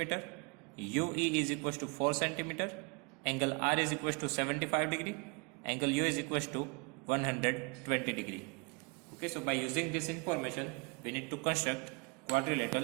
UE is equals to 4 cm, angle R is equals to 75 degree, angle U is equals to 120 degree. Okay, so by using this information, we need to construct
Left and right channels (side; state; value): left; quieter; 31.7 dB